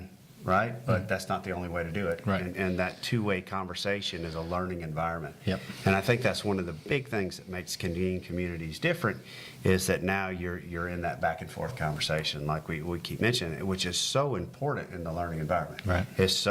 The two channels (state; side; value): identical; both; correlation 1.00